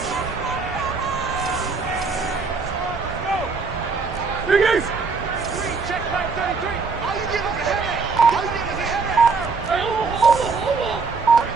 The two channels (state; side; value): quieter; left; 4.6 dB